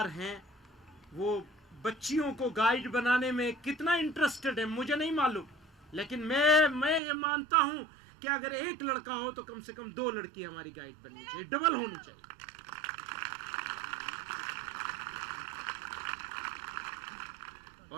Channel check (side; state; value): left; drops out; at 7.0 s